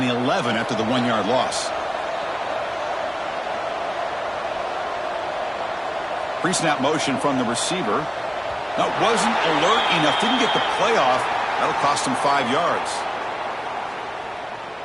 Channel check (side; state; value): both; identical; correlation 1.00